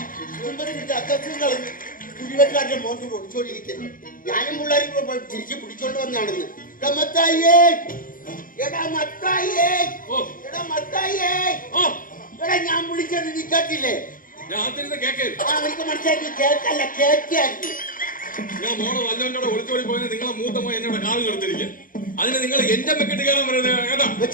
കുടിവെക്കാരുടെ മോന്ത് പൊടിച്ചോണ്ടിരിക്കുന്നു. ഞാനും പിള്ളേരും കൂടെ തിരിച്ച് പിടിച്ചോണ്ട് വന്നാണെന്ന്. മത്തായിയേ, എടാ മത്തായിയേ, എടാ മത്തായിയേ, എടാ ഞാൻ വിളിച്ചത് നീ കേട്ടില്ലേ? എനിക്ക് മനസ്സിലാക്കി കേക്കല്ല, കേക്കായിരുന്നു. ഞാൻ മോളെ വല്ലവന്റെ ഒളിച്ചോടി പോയത് നിങ്ങളെ മൂത്ത മോൻ എന്നോട് കാല് നിർത്തിരിക്കുക. അതിന് നിങ്ങൾ എന്റെ മെക്കിട്ട് കയറാൻ പറയുന്നത് കേട്ടാ.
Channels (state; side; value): late; right; 0.40 ms